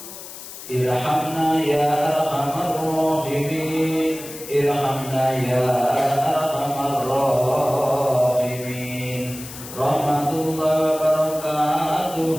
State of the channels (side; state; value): left; noise; hiss, 13 dB below the sound